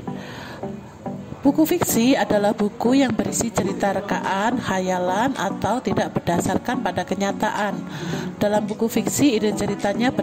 Buku fiksi adalah buku yang berisi cerita rekaan, khayalan, atau tidak berdasarkan pada kenyataan. Dalam buku fiksi, ide ceritanya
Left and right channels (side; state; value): both; identical; correlation 1.00